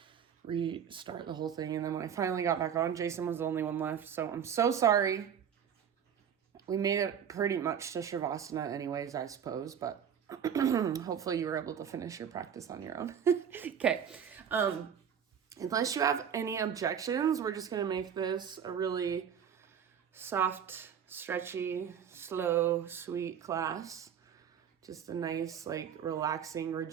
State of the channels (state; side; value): quieter; left; 8.2 dB